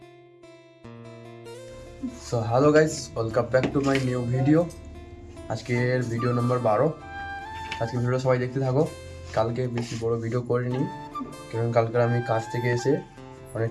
So hello guys, welcome back to my new video. আজকের video number 12। আজকে video সবাই দেখতে থাকো। কালকে বেশি বড় ভিডিও করিনি, কারণ কালকে আমি কাজ থেকে এসে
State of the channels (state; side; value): identical; both; correlation 1.00